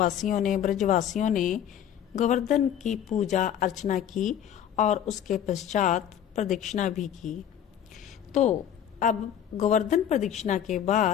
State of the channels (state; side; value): quieter; right; 9.7 dB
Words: ने, ब्रजवासियों ने गोवर्धन की पूजा अर्चना की और उसके पश्चात प्रदक्षिणा भी की। तो अब गोवर्धन प्रदक्षिणा के